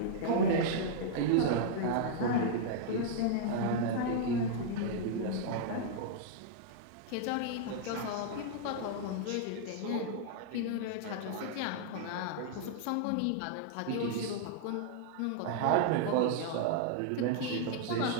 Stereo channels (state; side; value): different; both; correlation -0.01